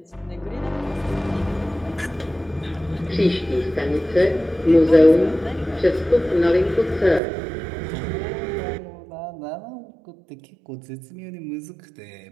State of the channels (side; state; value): left; drops out; at 7.2 s